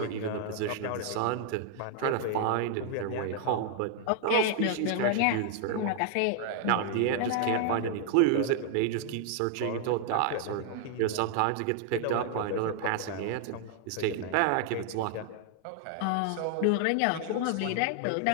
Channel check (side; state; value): both; different; correlation 0.00